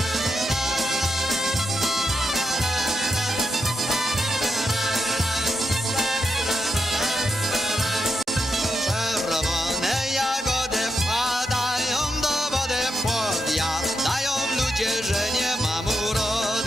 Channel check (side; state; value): both; normal; correlation 0.84